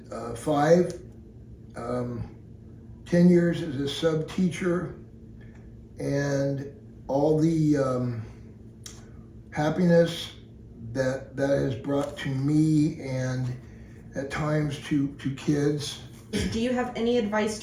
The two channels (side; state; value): both; identical; correlation 1.00